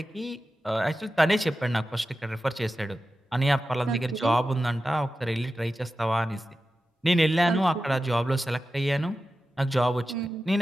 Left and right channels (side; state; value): both; normal; correlation 0.93